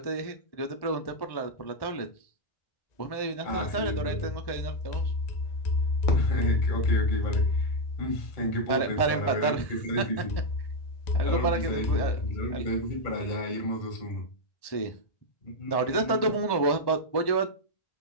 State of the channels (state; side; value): late; right; 1.1 ms